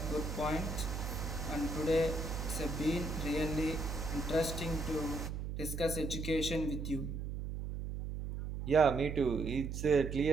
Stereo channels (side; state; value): right; noise; hum, 5 dB below the sound